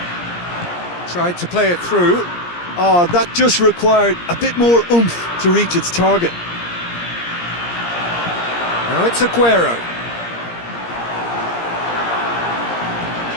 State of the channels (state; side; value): late; right; 17 ms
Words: Tried to play it through. Oh, that just required a bit more oomph to reach its target. Now it's Aguero.